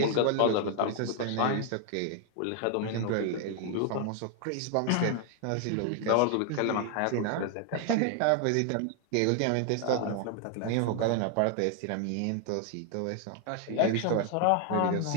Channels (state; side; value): different; both; correlation 0.00